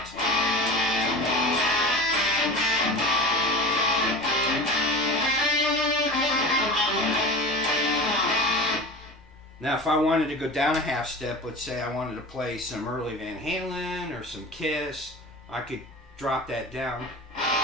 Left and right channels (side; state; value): both; normal; correlation 0.33